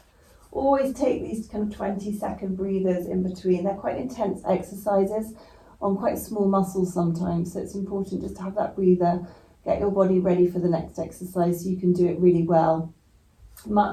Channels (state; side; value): identical; both; correlation 1.00